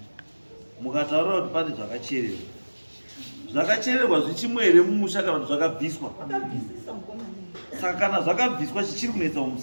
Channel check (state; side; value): inverted; both; correlation -1.00